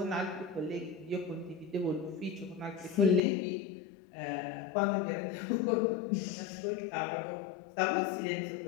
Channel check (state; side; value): drops out; right; at 3.2 s